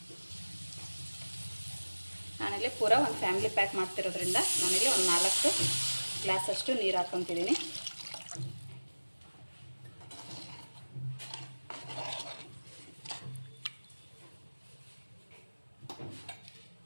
ನಾನಿಲ್ಲಿ ಪೂರ ಒಂದು ಫ್ಯಾಮಿಲಿ ಪ್ಯಾಕ್ ಮಾಡ್ತಿರೋದ್ರಿಂದ ನಾನಿಲ್ಲಿ ಒಂದು 4 ಗ್ಲಾಸಷ್ಟು ನೀರು ಹಾಕ್ಕೊತಿದ್ದೀನಿ.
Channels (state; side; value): inverted; both; correlation -1.00